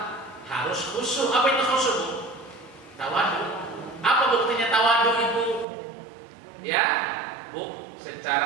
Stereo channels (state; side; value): drops out; left; at 5.7 s